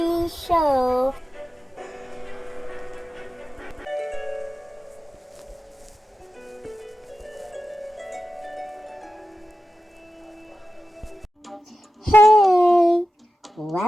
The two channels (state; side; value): normal; both; correlation 0.92